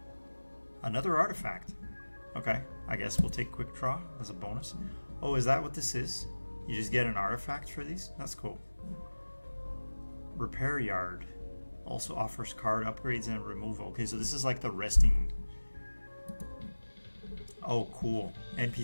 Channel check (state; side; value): inverted; both; correlation -1.00